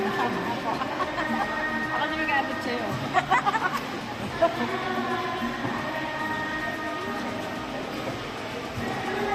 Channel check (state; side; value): identical; both; correlation 1.00